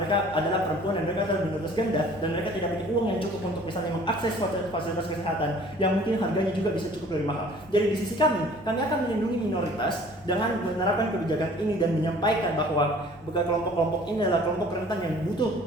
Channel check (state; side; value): normal; both; correlation 0.51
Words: adalah perempuan dan mereka adalah minoritas ganda dan mereka tidak punya uang yang cukup untuk misalnya mengakses fasilitas kesehatan yang mungkin harganya juga bisa cukup lebih mahal. Jadi di sisi kami akan melindungi minoritas dengan menerapkan kebijakan ini dan menyampaikan bahwa kelompok-kelompok ini adalah kelompok rentan yang butuh